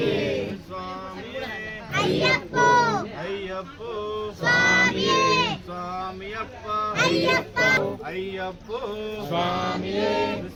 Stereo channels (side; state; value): both; identical; correlation 1.00